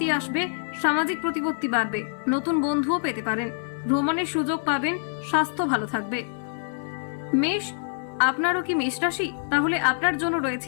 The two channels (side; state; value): right; silent; 56 dB below the other